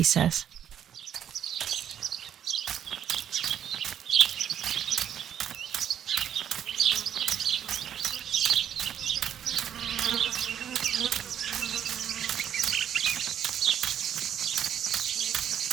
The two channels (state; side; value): quieter; left; 9.7 dB